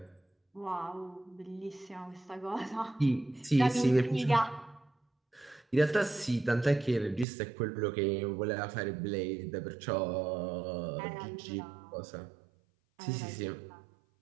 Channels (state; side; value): drops out; left; at 7.2 s